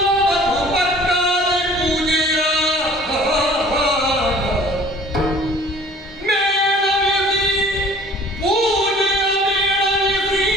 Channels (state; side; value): normal; both; correlation 0.50